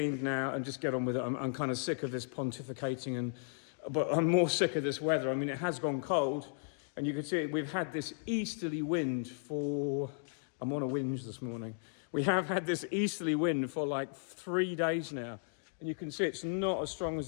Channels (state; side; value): silent; right; digital silence